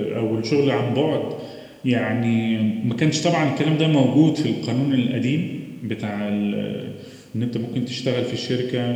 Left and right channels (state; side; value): identical; both; correlation 1.00